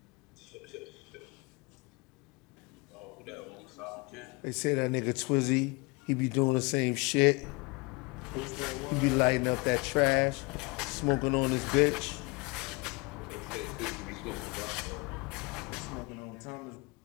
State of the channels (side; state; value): right; quieter; 28.0 dB